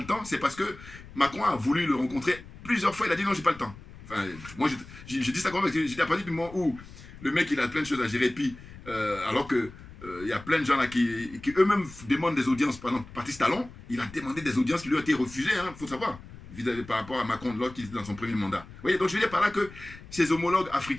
temps, c'est parce que Macron a voulu le rencontrer plusieurs fois. Il a dit non, j'ai pas le temps. Enfin, moi, je dis ça quand même parce que j'étais à partir du moment où le mec, il a plein de choses à gérer. Puis, alors que il y a plein de gens là qui eux-mêmes demandent des audiences. Par exemple, Patrice Talon, il a demandé des audiences qui lui ont été refusées, il faut savoir, vis-à-vis par rapport à Macron de qui était dans son premier mandat. Vous voyez, donc je veux dire par là que ses homologues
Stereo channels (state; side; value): noise; left; rumble, 17 dB below the sound